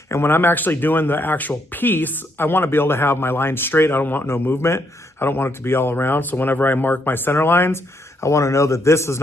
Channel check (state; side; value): normal; both; correlation 0.74